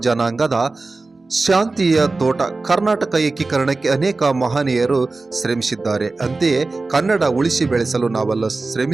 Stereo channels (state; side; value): quieter; left; 3.5 dB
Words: ಜನಾಂಗದ ಶಾಂತಿಯ ತೋಟ. ಕರ್ನಾಟಕ ಏಕೀಕರಣಕ್ಕೆ ಅನೇಕ ಮಹನೀಯರು ಶ್ರಮಿಸಿದ್ದಾರೆ. ಅಂತೆಯೇ ಕನ್ನಡ ಉಳಿಸಿ ಬೆಳೆಸಲು ನಾವೆಲ್ಲ